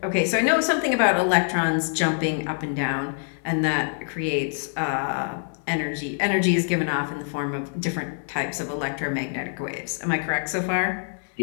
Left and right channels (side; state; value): right; silent; digital silence